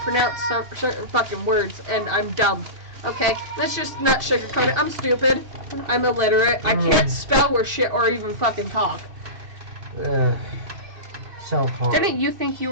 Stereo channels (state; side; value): late; left; 2.6 ms